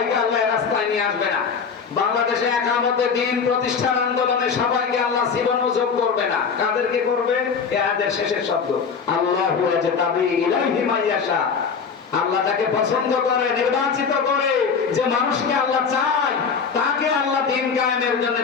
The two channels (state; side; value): quieter; right; 5.9 dB